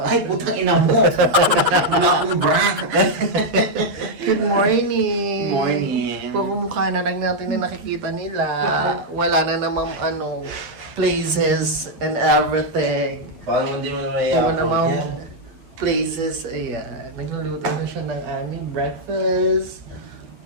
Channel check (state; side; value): late; left; 9.1 ms